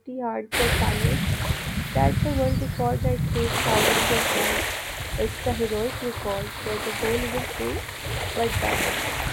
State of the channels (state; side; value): identical; both; correlation 1.00